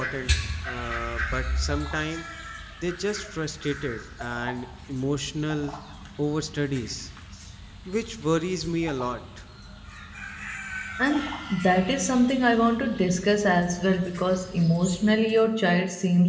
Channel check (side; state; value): both; identical; correlation 1.00